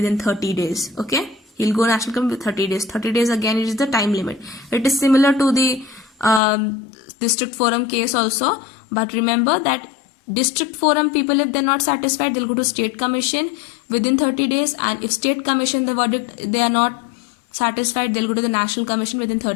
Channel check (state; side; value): drops out; right; at 6.4 s